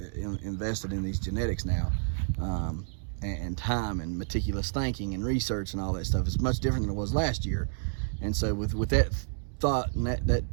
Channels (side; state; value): left; silent; digital silence